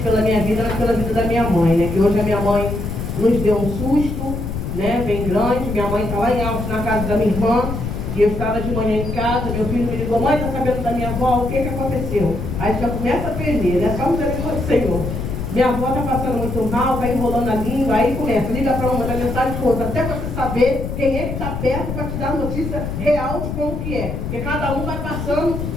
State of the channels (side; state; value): left; noise; rumble, 5 dB below the sound